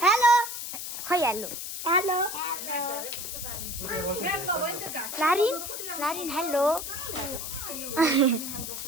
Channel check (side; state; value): left; noise; hiss, 6 dB below the sound